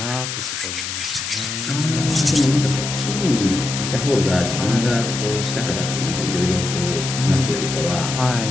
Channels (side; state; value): left; noise; hiss, 5 dB below the sound